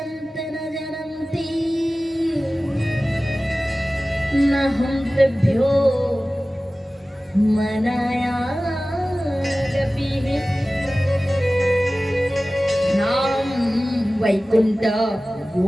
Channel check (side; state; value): both; normal; correlation 0.97